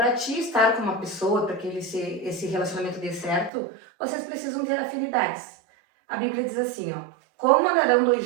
ti estar com uma pessoa, para que esse relacionamento dê certo, vocês precisam ter afinidades. A Bíblia diz assim, ó, como andarão dois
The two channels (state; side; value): drops out; left; at 3.5 s